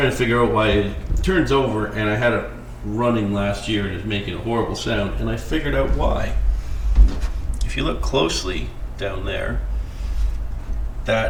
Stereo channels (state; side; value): identical; both; correlation 1.00